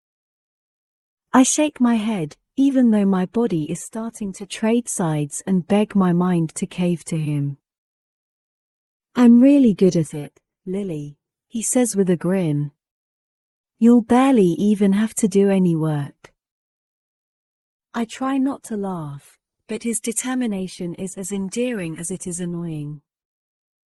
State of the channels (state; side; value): identical; both; correlation 1.00